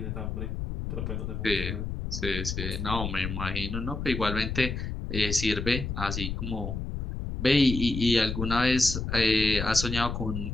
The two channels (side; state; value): left; noise; rumble, 4 dB below the sound